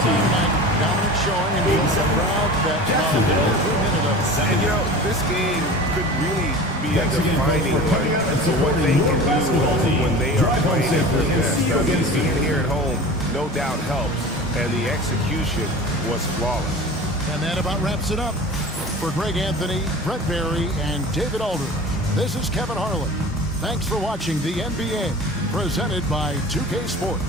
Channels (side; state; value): both; normal; correlation 0.36